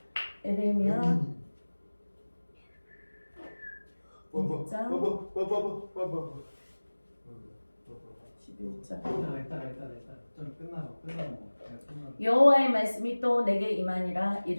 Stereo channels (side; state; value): both; inverted; correlation -1.00